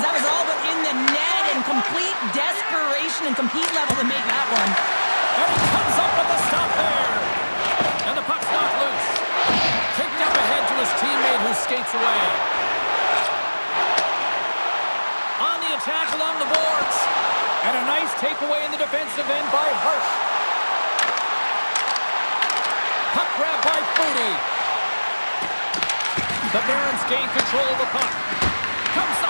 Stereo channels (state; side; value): inverted; both; correlation -1.00